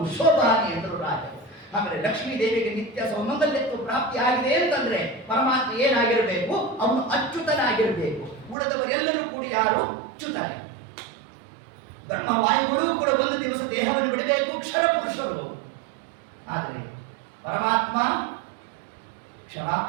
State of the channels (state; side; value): drops out; left; at 8.6 s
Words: ಶೋಭಾನೆ ಎಂದರು ರಾಜರು. ಹಾಗಾದ್ರೆ ಲಕ್ಷ್ಮೀ ದೇವಿಗೆ ನಿತ್ಯ ಸೌಮಂಗಲ್ಯತ್ವ ಪ್ರಾಪ್ತಿ ಆಗಿದೆ ಅಂತಂದ್ರೆ ಪರಮಾತ್ಮ ಏನಾಗಿರಬೇಕು? ಅವನು ಅಚ್ಯುತನಾಗಿರಬೇಕು. ಉಳಿದವರೆಲ್ಲರೂ ಕೂಡ ಯಾರು? ಅಚ್ಯುತನೇ. ಬ್ರಹ್ಮವಾಯುಗಳು ಕೂಡ ಒಂದು ದಿವಸ ದೇಹವನ್ನು ಬಿಡಬೇಕು, ಕ್ಷರ ಪುರುಷರು. ಆದರೆ ಪರಮಾತ್ಮ